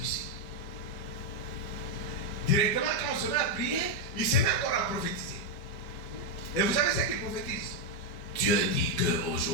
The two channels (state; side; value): late; right; 5.1 ms